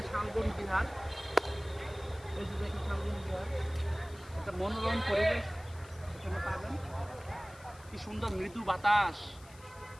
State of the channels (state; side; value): noise; left; hiss, 23 dB below the sound